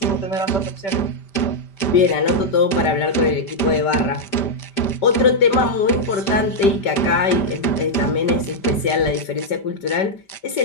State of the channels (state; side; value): late; right; 5.1 ms